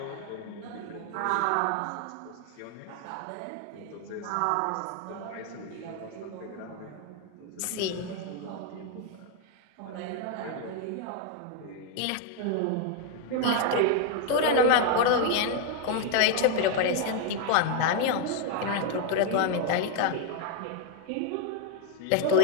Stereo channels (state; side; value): different; both; correlation 0.00